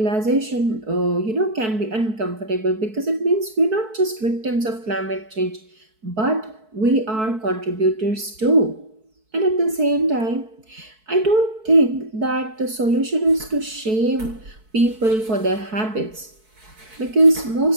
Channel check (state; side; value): late; left; 4.6 ms